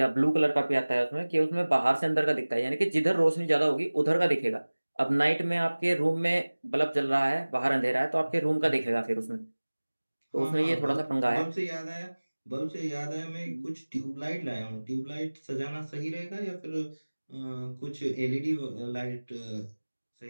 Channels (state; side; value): inverted; both; correlation -1.00